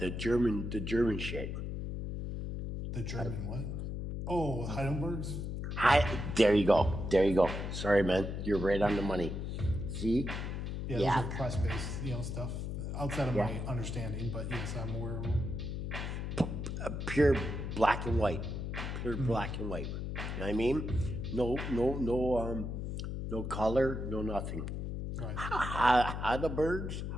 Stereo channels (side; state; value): left; noise; hum, 4 dB below the sound